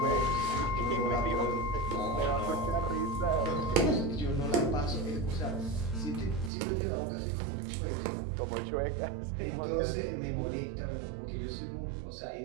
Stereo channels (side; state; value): left; drops out; at 6.5 s